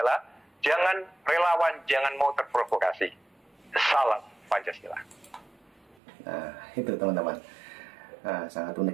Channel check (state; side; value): drops out; left; at 6.0 s